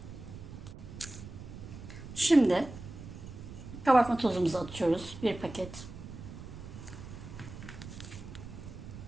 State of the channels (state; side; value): noise; right; rumble, 12 dB below the sound